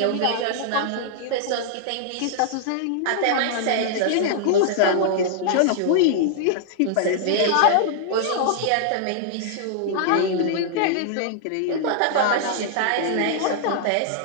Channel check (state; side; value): different; both; correlation -0.01